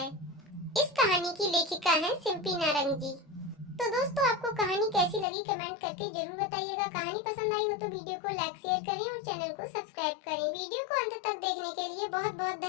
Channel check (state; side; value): drops out; right; at 5.2 s